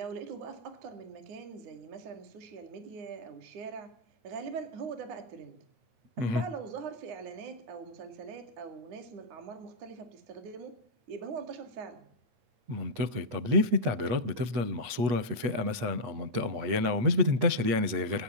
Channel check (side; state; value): left; late; 8.3 ms